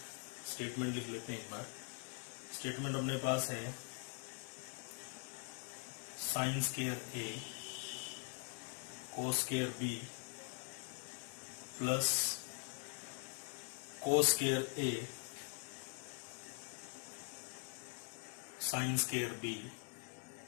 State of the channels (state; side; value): quieter; right; 37.3 dB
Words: स्टेटमेंट लिख लेते हैं एक बार। स्टेटमेंट अपने पास है sine square A cos square B plus cos square A sine square B